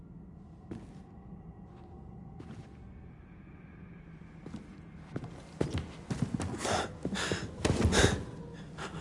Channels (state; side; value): identical; both; correlation 1.00